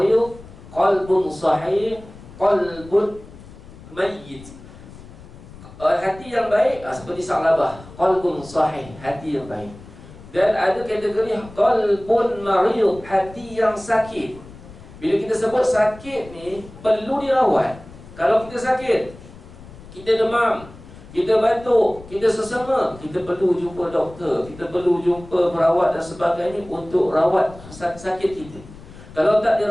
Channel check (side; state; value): left; noise; rumble, 18 dB below the sound